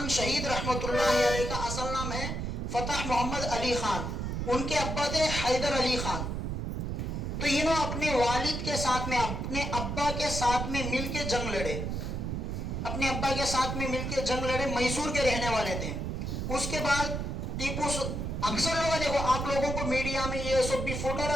شہید رحمۃ اللہ علیہ کا اصل نام ہے فتح محمد علی خان. ان کے ابا تھے حیدر علی خان. تو انہوں اپنے والد کے ساتھ میں اپنے ابا کے ساتھ میں مل کے جنگ لڑے. اپنے ابا کے ساتھ میں مل کے جنگ لڑے. میسور کے رہنے والے تھے. اس کے بعد ٹیپو اکثر لوگ دیکھو آپ لوگوں کو میڈیا میں یہ سب بھی فوٹو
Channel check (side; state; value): right; noise; rumble, 3 dB below the sound